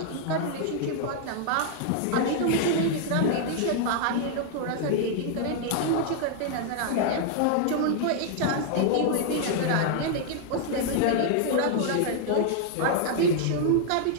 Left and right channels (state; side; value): different; both; correlation -0.01